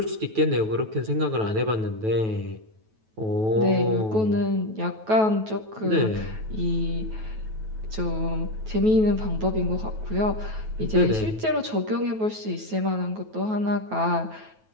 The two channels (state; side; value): late; left; 9.2 ms